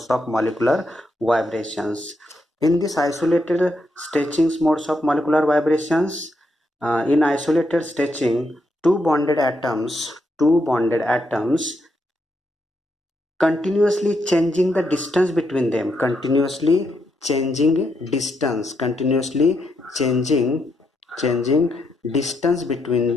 of molecular vibrations. In this isolated stretchings modes of molecular vibrations, in isolated stretching, two bonded atoms continuously changing the distance between them. Continuously changing distance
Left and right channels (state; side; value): normal; both; correlation 0.79